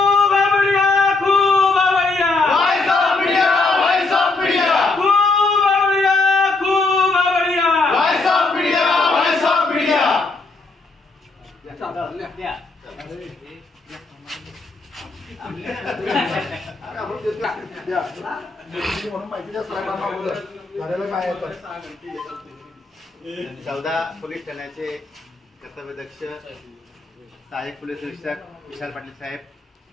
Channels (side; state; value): right; quieter; 3.6 dB